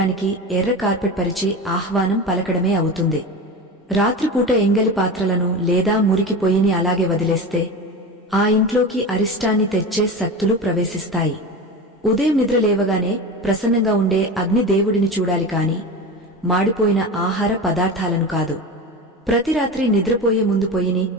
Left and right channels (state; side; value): normal; both; correlation 0.27